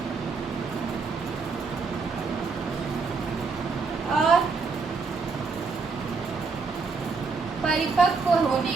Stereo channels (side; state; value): left; quieter; 4.6 dB